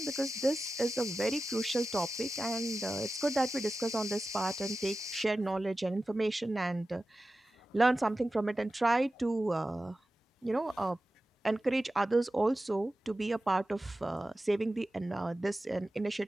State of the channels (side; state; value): both; normal; correlation 0.94